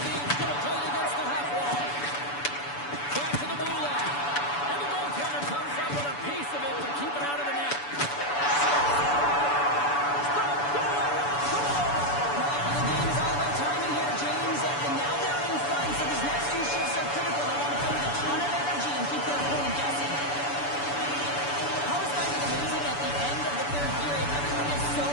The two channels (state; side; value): late; right; 6.9 ms